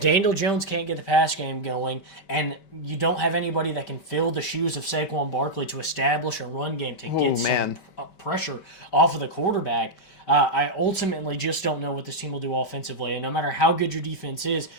Daniel Jones can't get the pass game going and you don't have anybody that can fill the shoes of Saquon Barkley to establish a run game to get some pressure off of the quarterback, I ultimately just don't know what this team will do offensively. And no matter how good your defense is,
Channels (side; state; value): right; late; 5.2 ms